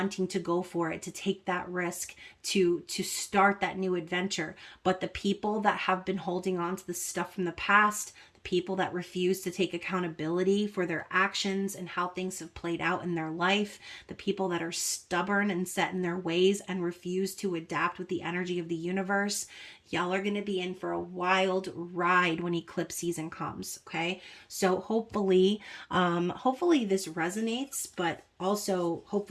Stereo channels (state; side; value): identical; both; correlation 1.00